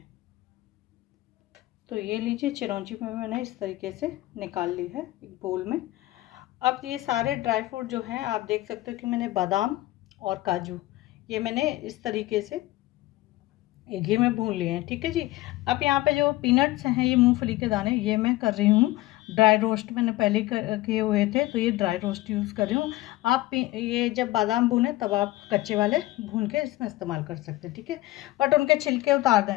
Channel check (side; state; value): right; quieter; 17.7 dB